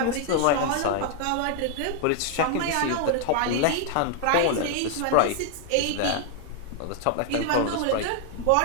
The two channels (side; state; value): both; different; correlation 0.00